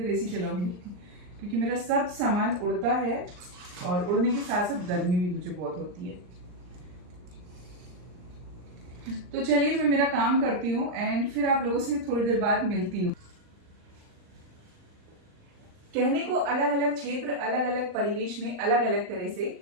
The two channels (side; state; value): left; late; 39 ms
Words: एसी चलाऊंगी, क्योंकि मेरा सब सामान उड़ता है, और उड़ने के साथ साथ गर्मी भी मुझे बहुत होती है। तो चलिए मैं मेरा काम करती हूँ, एंड फिर आप लोगों से थोड़ी देर बाद मिलती हूँ। कहने को अलग अलग क्षेत्र, अलग अलग परिवेश में अलग अलग तरह से